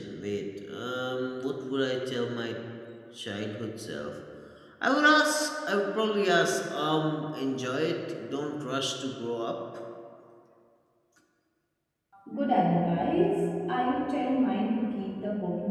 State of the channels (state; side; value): identical; both; correlation 1.00